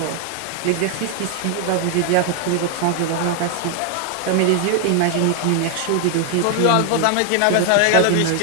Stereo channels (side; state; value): both; different; correlation 0.00